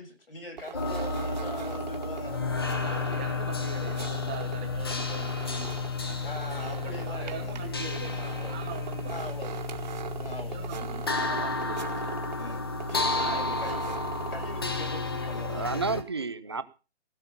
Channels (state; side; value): normal; both; correlation -0.20